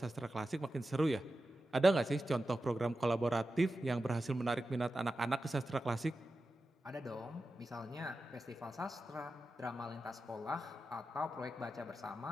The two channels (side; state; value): both; normal; correlation 0.92